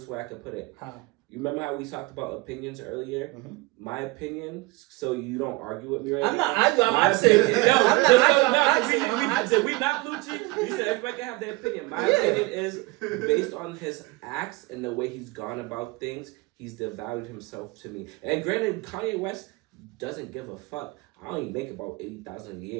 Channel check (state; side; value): quieter; left; 22.5 dB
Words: way I could put it. How? You remember how we talked about opinions earlier? Mhm. My opinion, so you don't argue with me right I'm now. not arguing. I'm My asking. opinion- I'm not no, arguing. I'm asking. did we not, Lucci? You said everybody can have their opinion. My Yeah. opinion is based on his acts and the way he's gone about things, he's devalued himself to me. And granted, Kanye West doesn't give a fuck. I only make about $80,000 a